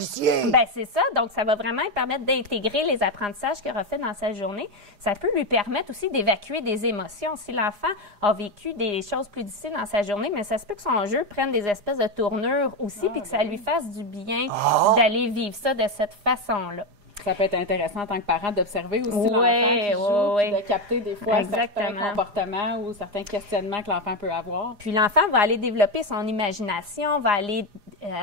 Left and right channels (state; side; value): late; left; 4.9 ms